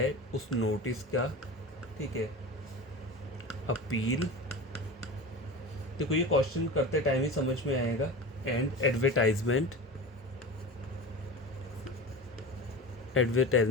उस नोटिस का, ठीक है, अपील, देखो ये क्वेश्चन करते टाइम ही समझ में आएगा, एंड एडवर्टाइजमेंट,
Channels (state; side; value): normal; both; correlation 0.31